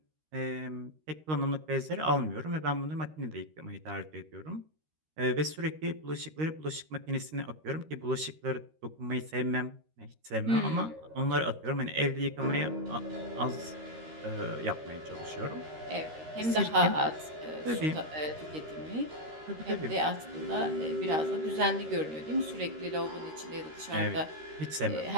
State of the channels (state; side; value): late; left; 13 ms